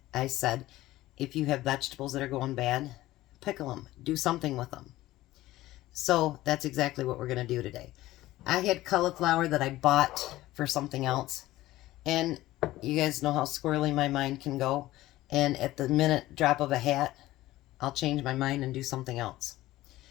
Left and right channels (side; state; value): right; quieter; 16.5 dB